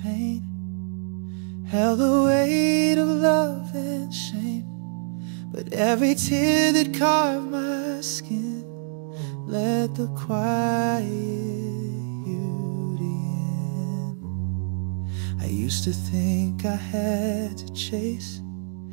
pain, held the weight of love and shame, but every tear that carved my skin let the quiet beauty in. I used to think I had to chase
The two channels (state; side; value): silent; left; digital silence